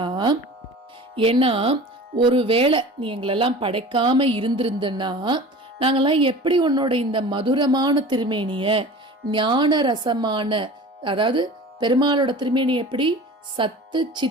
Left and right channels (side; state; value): both; normal; correlation 0.39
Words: ஏன்னா ஒருவேளை நீ எங்களெல்லாம் படைக்காம இருந்திருந்தன்னா நாங்கெல்லாம் எப்படி உன்னோட இந்த மதுரமான திருமேனிய ஞான ரசமான, அதாவது பெருமாளோட திருமேனி எப்படி சத்து